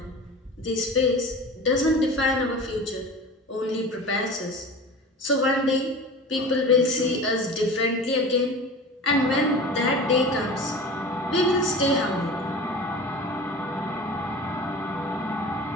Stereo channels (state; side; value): normal; both; correlation 0.36